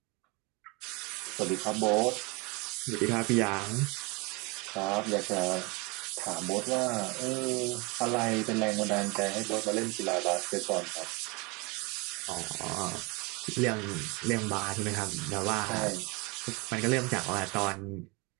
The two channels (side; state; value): left; quieter; 27.8 dB